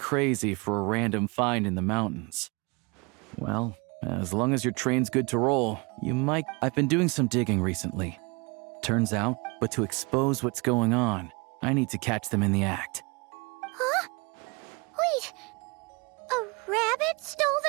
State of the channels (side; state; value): left; quieter; 28.7 dB